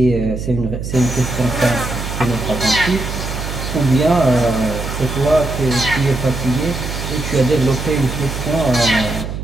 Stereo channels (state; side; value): noise; right; hum, 6 dB below the sound